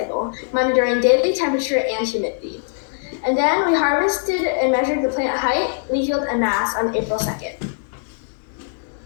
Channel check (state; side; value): silent; right; digital silence